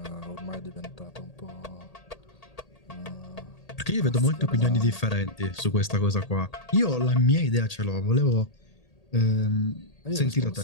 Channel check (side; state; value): right; late; 1.8 ms